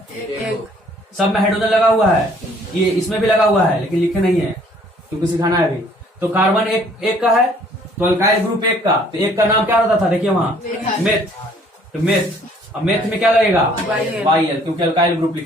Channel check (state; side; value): normal; both; correlation 0.59